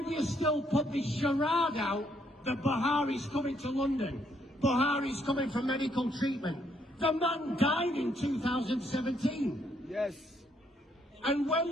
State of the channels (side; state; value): both; normal; correlation 0.72